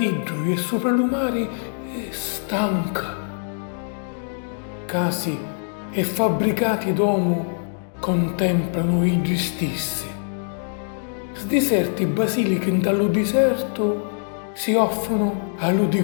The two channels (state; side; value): silent; right; digital silence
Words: lui e sopra l'umare, è stanca. Casi e fabbricati d'uomo contemplano i stessi. Sdiserti basiliche dallo deserto si offrono